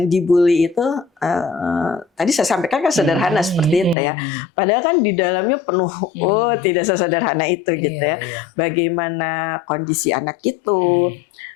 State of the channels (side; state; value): right; drops out; at 4.0 s